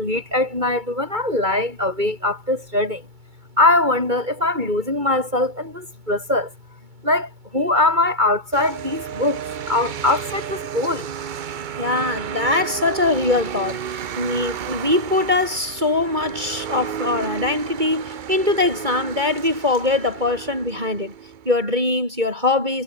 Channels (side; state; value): left; late; 2.2 ms